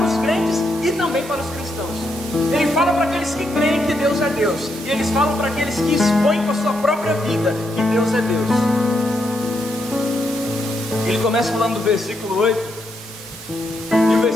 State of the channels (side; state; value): both; normal; correlation 0.79